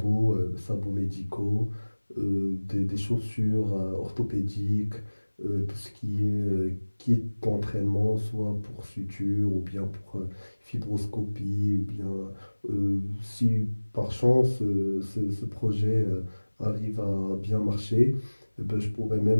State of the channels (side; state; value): both; inverted; correlation -1.00